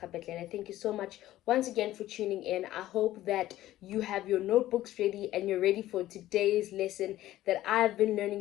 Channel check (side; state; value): right; quieter; 14.6 dB